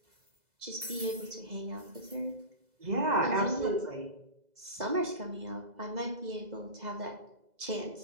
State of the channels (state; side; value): late; left; 2.0 ms